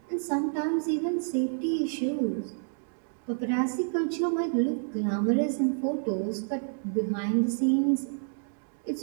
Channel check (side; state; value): left; silent; digital silence